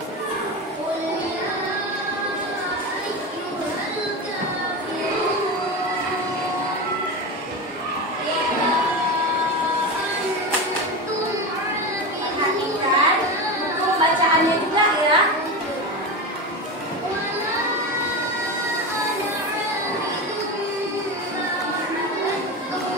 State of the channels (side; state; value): both; normal; correlation 0.21